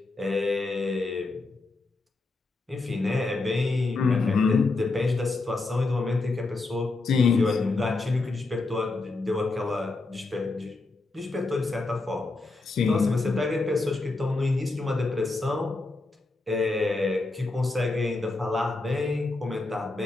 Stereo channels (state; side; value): quieter; right; 3.4 dB